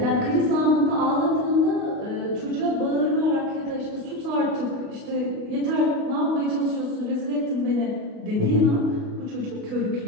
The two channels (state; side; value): late; left; 29 ms